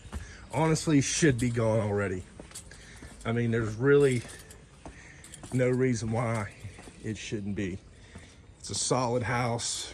honestly should be gone already. I mean, there's really no reason why it shouldn't be. It's a solid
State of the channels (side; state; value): both; identical; correlation 1.00